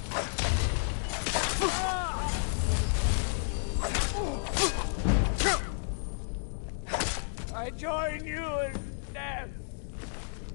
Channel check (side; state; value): right; silent; digital silence